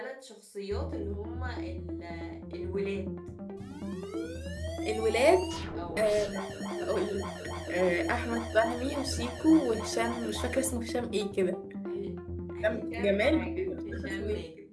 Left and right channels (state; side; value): identical; both; correlation 1.00